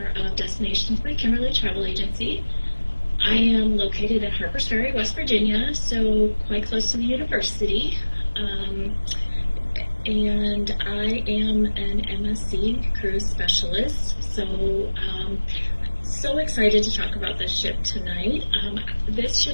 of Destinations by Kimberly Travel Agency. I am located in Harpers Ferry, West Virginia, so quite close to the university. And I am an MSC Cruise Specialist, so excited to talk about this ship tonight. This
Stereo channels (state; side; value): inverted; both; correlation -1.00